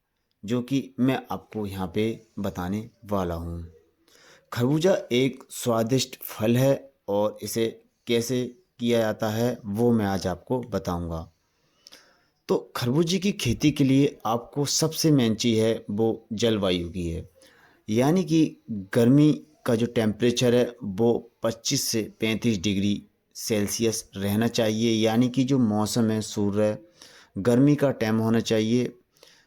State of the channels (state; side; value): identical; both; correlation 1.00